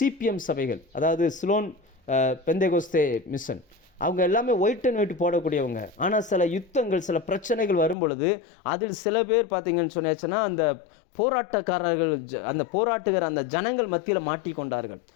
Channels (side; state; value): right; drops out; at 8.0 s